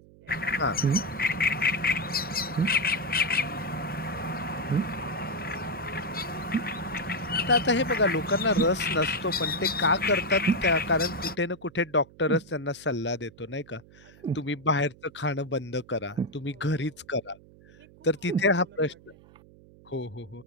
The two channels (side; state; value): right; noise; hum, 24 dB below the sound